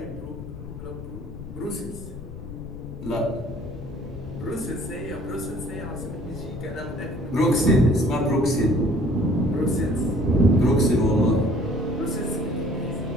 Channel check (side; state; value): left; noise; rumble, 12 dB below the sound